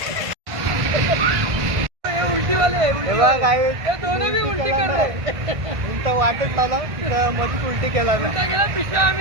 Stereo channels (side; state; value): left; late; 1.5 ms